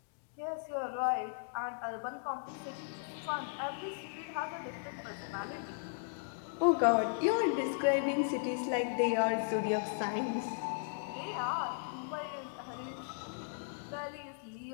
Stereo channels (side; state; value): right; silent; digital silence